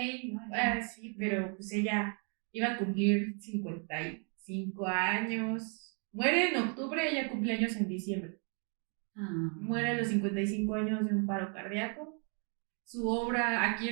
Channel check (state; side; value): quieter; left; 39.8 dB